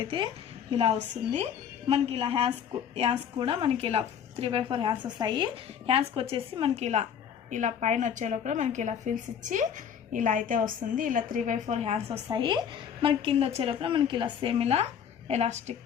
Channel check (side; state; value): right; quieter; 8.2 dB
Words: అయితే ఇలా వస్తుంది మనకి. ఇలా హ్యాండ్స్ కూడా మనకి ఇలా 3x4 హ్యాండ్స్ వస్తాయి. హ్యాండ్స్కి వచ్చేసి మనకి ఇలా పైన వచ్చే లోపల మనకి ఇలా ఫిల్స్ ఇచ్చి ఇలా అయితే వస్తుంది. ఇలా 3x4 హ్యాండ్స్ వస్తాయి మనకి. కింద వచ్చే లోపల మనకి ఇలా సేమ్ ఇలా ఎలాస్టిక్